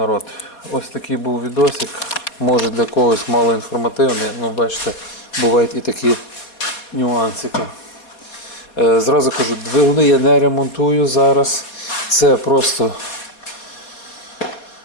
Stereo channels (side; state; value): right; late; 4.1 ms